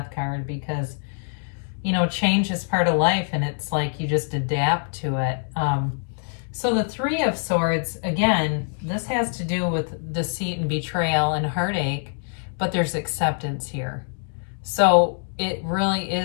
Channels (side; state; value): right; silent; 62 dB below the other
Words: card, because change is part of life, and it's like you just adapt to it. So the Three of Swords, again, this has to do with deceit and betrayal and heartache, but there's acceptance here. So it really